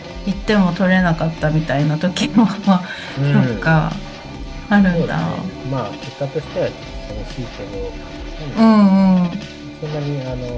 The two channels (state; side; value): identical; both; correlation 1.00